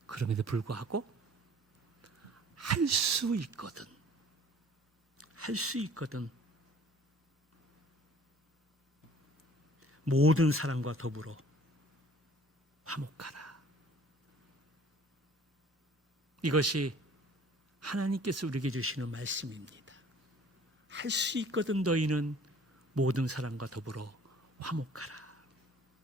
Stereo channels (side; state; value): both; normal; correlation 0.52